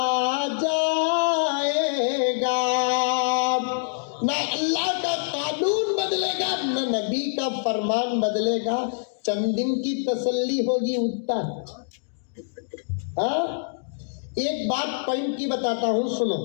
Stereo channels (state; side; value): silent; right; digital silence